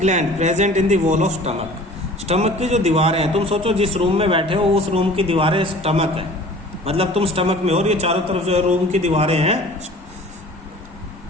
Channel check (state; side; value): normal; both; correlation 0.45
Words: present in the wall of stomach. Stomach की जो दीवारें हैं, तुम सोचो जिस रूम में बैठे हो उस रूम की दीवारें स्टमक है, मतलब तुम स्टमक में हो और ये चारों तरफ जो है रूम की दीवारें हैं